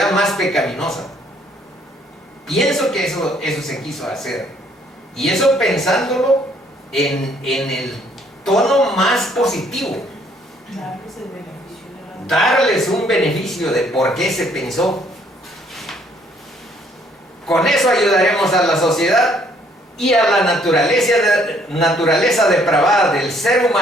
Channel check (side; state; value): both; normal; correlation 0.64